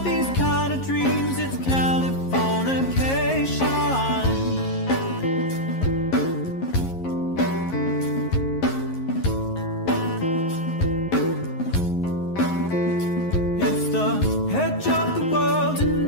these kind of dreams, it's Californication. It's the edge of the world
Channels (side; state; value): right; late; 11 ms